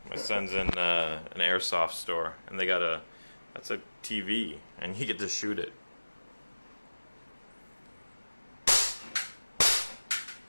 My son's in an AIRSOFT store, and they got that's a TV, and you get to shoot it.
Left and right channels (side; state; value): both; inverted; correlation -1.00